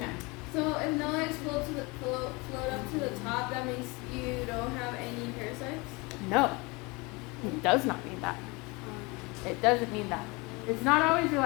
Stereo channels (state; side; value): quieter; right; 26.2 dB